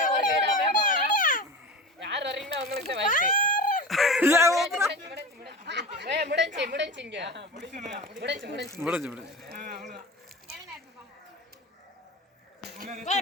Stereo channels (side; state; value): both; normal; correlation 0.30